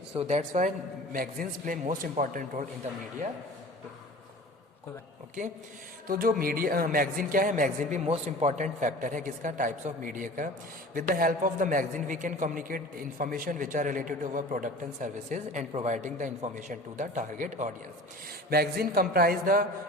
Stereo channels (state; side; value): normal; both; correlation 0.41